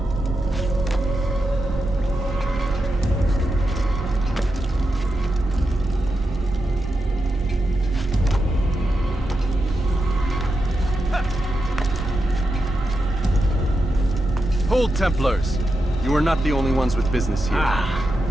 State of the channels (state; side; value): normal; both; correlation 0.87